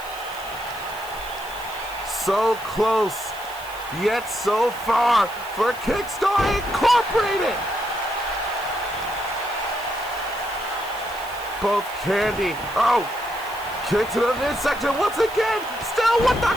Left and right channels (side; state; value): left; noise; hiss, 18 dB below the sound